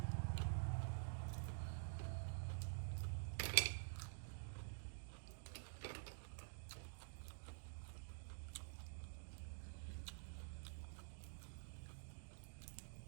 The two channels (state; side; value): silent; left; digital silence